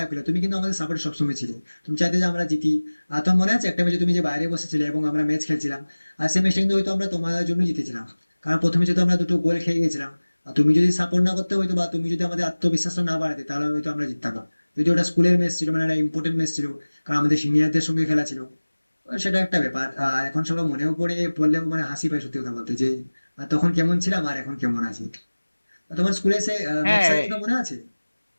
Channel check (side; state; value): both; inverted; correlation -1.00